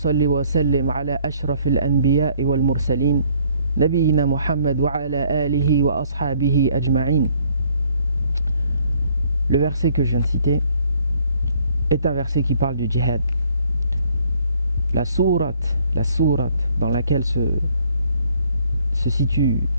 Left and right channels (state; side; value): inverted; both; correlation -0.63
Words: وسلم على أشرف الأنبياء والمرسلين نبينا محمد وعلى آله وأصحابه أجمعين. Le verset que je viens de citer est un verset qui parle du djihad. La sourate dans laquelle se situe